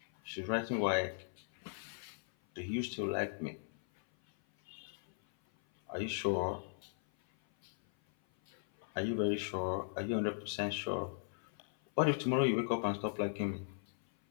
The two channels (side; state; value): right; silent; 53 dB below the other